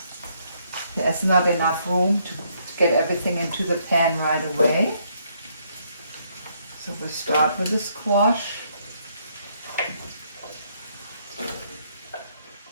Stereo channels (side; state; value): both; inverted; correlation -0.71